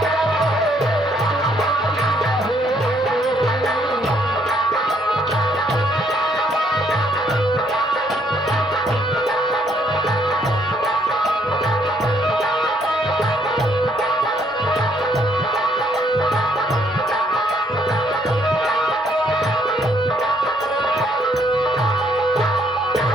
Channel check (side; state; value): both; normal; correlation 0.68